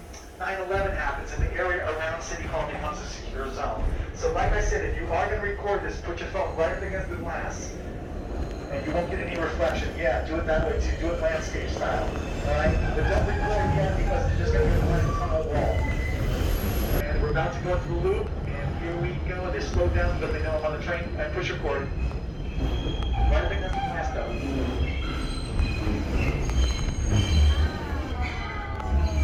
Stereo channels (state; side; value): identical; both; correlation 1.00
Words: 9/11 happens, and the area around City Hall becomes a secure zone. So, like I said, if you are going to record this, put your phone right up against the glass. And you won't get any reflection. Yeah, do it that way too. Do it landscape style. Alright? But don't record yet because it's just going to be a blank tunnel wall. And we're about to go through the loop. And here we go. They slow down because they know I'm on the train. And push record. Right up against the glass though.